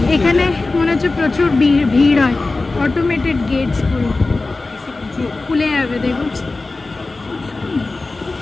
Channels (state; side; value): quieter; right; 3.4 dB